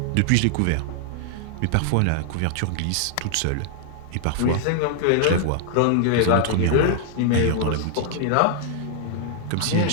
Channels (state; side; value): different; both; correlation -0.01